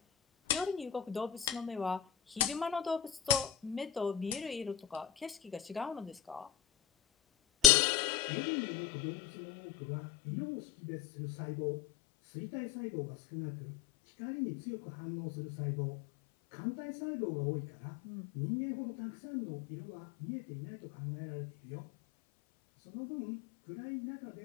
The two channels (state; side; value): drops out; right; at 7.7 s